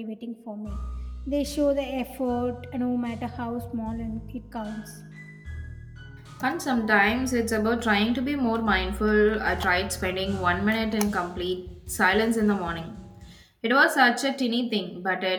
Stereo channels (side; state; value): both; identical; correlation 1.00